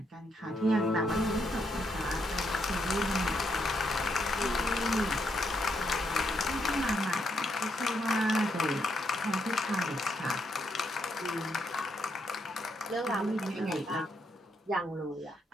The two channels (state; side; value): normal; both; correlation 0.77